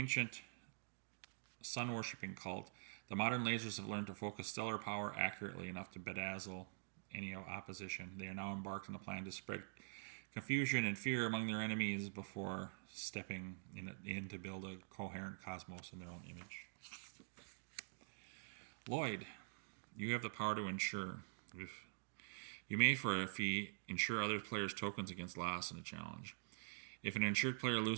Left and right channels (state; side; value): silent; left; digital silence